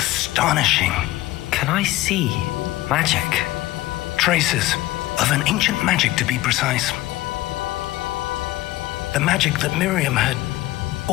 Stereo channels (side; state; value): right; quieter; 17.1 dB